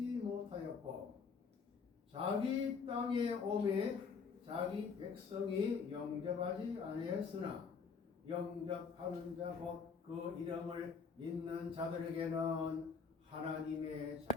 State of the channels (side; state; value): right; quieter; 5.6 dB